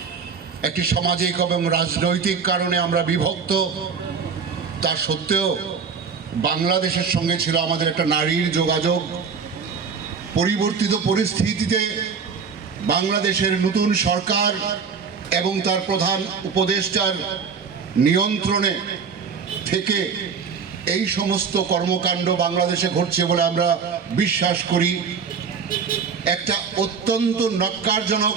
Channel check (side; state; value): left; quieter; 5.8 dB